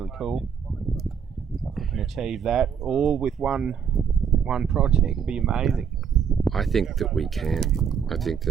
cool. So if we can achieve that all with one project, it'd be amazing. I think that we can. I think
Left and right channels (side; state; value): left; quieter; 7.3 dB